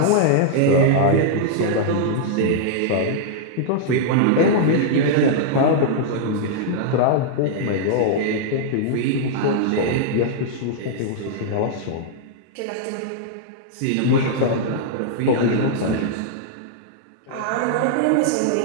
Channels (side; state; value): both; different; correlation -0.01